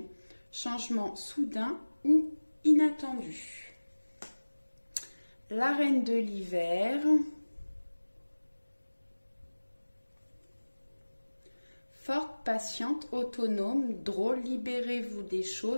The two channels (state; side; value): inverted; both; correlation -1.00